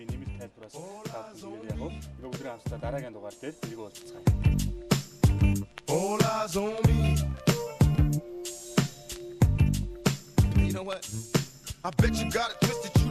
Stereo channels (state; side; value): identical; both; correlation 1.00